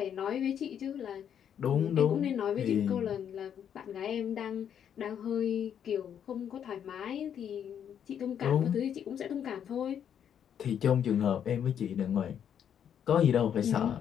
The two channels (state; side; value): quieter; right; 8.8 dB